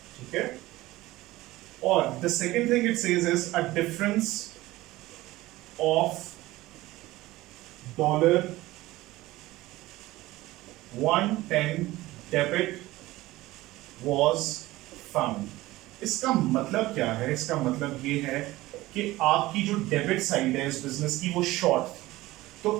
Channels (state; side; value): quieter; left; 18.0 dB